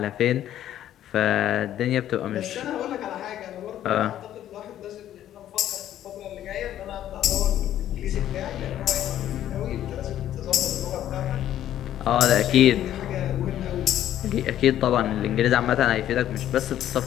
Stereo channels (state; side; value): quieter; right; 11.8 dB